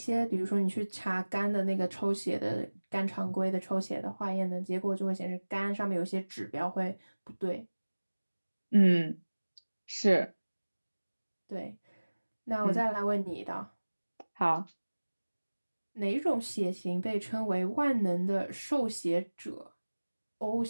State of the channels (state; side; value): inverted; both; correlation -1.00